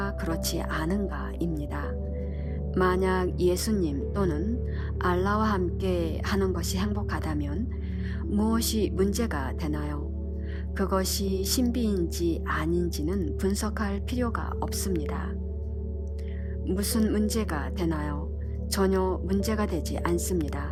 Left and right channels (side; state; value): both; identical; correlation 1.00